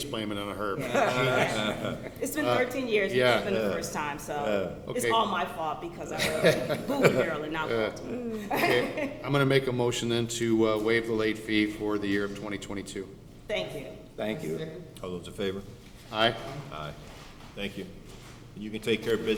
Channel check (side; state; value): both; identical; correlation 1.00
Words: blaming it on her. It's been 13 years. yeah. It's been the first time, so it's Okay. all my fault because I moved to Maryland, not Baltimore. Okay, I'm gonna make a motion then to waive the late fee for the year of 2022. Thank you. Thank you. Second. All those in favor? Aye. Aye. Thank you. And you can take care of